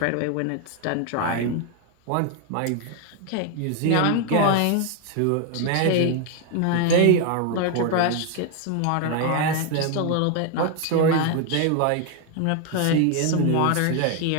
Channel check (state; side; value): different; both; correlation 0.01